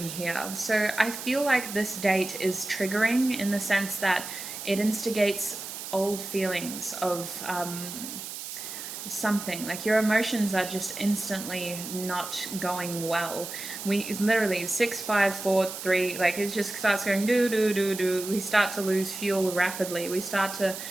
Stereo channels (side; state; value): right; noise; hiss, 9 dB below the sound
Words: here. So I feel like this date is triggering in the sense that it instigates old feelings of something like your emotions are just instantly not going well. We literally 6 5 4 3, like it just starts going do do do do. We start to lose fuel rapidly, we start to